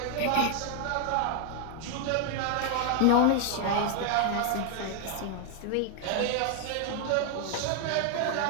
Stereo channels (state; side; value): different; both; correlation 0.00